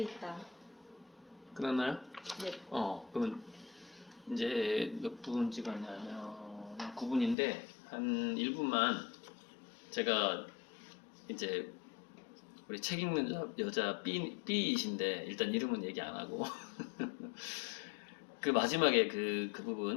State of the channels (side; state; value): right; drops out; at 7.4 s